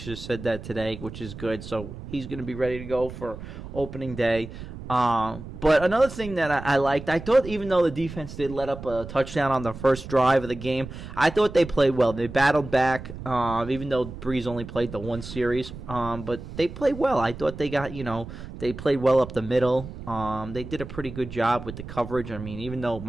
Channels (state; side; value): noise; right; rumble, 12 dB below the sound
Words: just said that today, which is good. So he's going to be ready to go for opening day. But another thing that I liked, I thought even though the defense did let up a touchdown on the first drive of the game, I thought they played well. They battled back, even though Breeze only played the one series. But they played well. I thought they got, they played well up the middle. They did a pretty good job with the coverage. I mean, even though